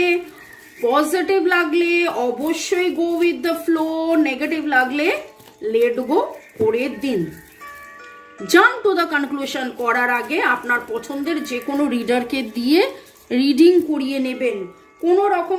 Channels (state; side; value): identical; both; correlation 1.00